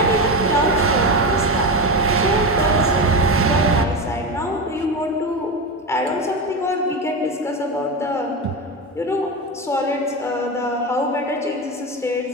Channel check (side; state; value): both; normal; correlation 0.18